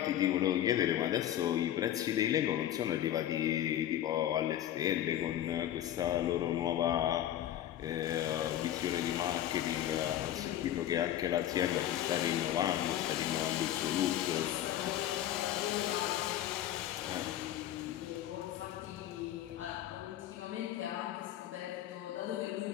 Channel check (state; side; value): quieter; right; 12.1 dB